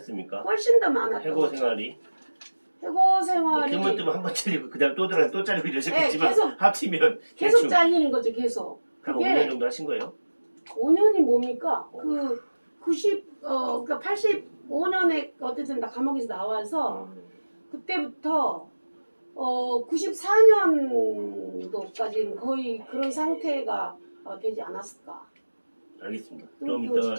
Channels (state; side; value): inverted; both; correlation -1.00